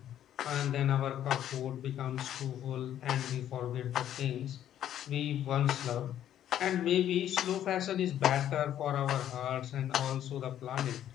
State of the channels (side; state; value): right; quieter; 11.0 dB